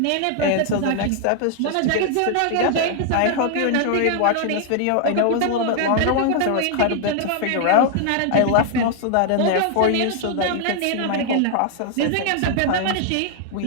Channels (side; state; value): both; different; correlation 0.00